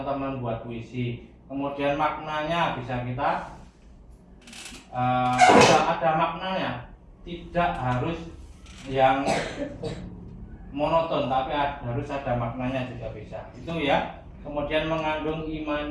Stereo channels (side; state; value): both; identical; correlation 1.00